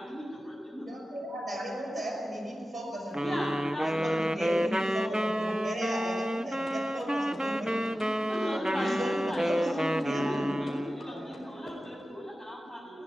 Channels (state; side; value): normal; both; correlation 0.94